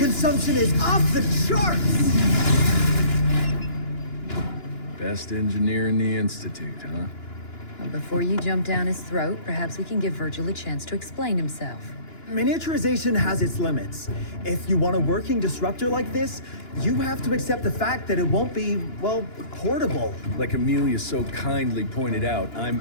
is off the charts! Best engineer in the Institute, huh? Well, before you jump down his throat, perhaps we can give Virgil a chance to explain himself. Miniaturization has its limits. If you want a working disruptor like this, you have to accept the fact that it won't be, well, portable. Like Amelia so kindly pointed out,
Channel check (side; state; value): right; late; 2.9 ms